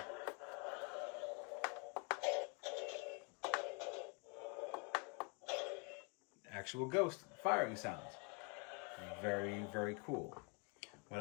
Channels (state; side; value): quieter; right; 32.3 dB